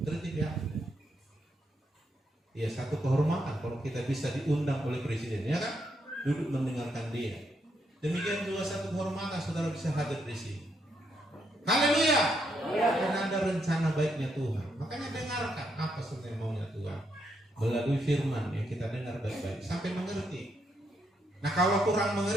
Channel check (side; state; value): both; normal; correlation 0.78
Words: tertib ya. Ya, satu kehormatan kalau kita bisa diundang oleh presiden, ya kan? Duduk mendengarkan dia. Demikian juga satu kehormatan saudara bisa hadir di sini. Haleluya. Karena ada rencana baiknya Tuhan. Makanya dengarkan apa sebenarnya maunya Tuhan melalui firman yang kita dengar baik-baik sampai mengerti. Nah, kalau kurang